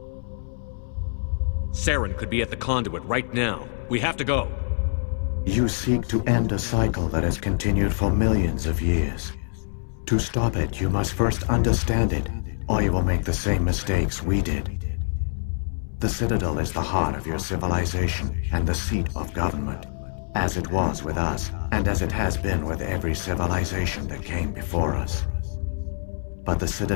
Saren could be at the Conduit right now. We have to go. You seek to end a cycle that has continued for millions of years. To stop it, you must first understand it, or you will make the same mistakes we did. The Citadel is the heart of your civilization and the seat of government, as it was with us, and as it has been with every civilization that came before us. But the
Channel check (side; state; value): right; silent; 60 dB below the other